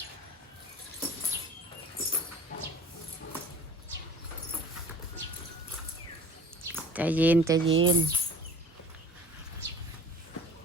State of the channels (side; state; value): both; normal; correlation 0.45